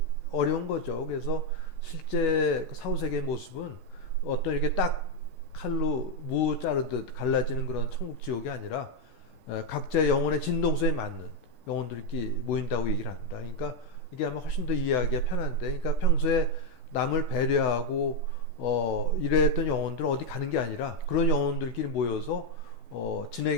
어려운 거죠. 그래서 실제 그 사후세계의 모습은 어떤 이렇게 딱 칼로 무 자르듯 갈라지는 그런 천국 지옥이 아니라 각자의 영혼의 진동소에 맞는 영혼들끼리 모인다고 얘기를 합니다. 그러니까 이게 아마 훨씬 더 이해하기가 편한데, 그러니까 평소에 남을 배려하고 이랬던 영혼들은 어디 가는 게 아니라 그런 영혼들끼리 모여서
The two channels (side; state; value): right; late; 6.3 ms